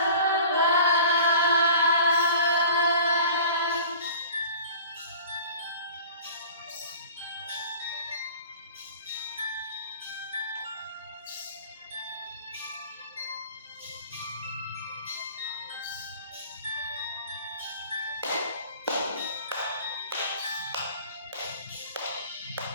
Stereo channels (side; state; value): both; inverted; correlation -0.43